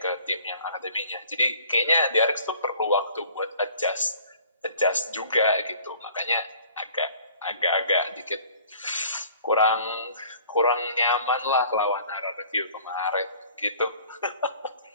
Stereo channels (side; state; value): both; inverted; correlation -0.52